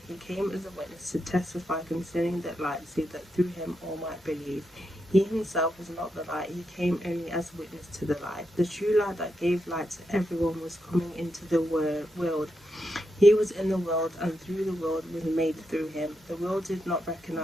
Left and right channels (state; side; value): normal; both; correlation 0.84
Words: He came as a witness to testify concerning that light, so that through him all might believe. He himself was not the light, he came only as a witness to the light. The true light that gave light to everyone was coming into the world. He was in the world, and through the world was made through him. The world did not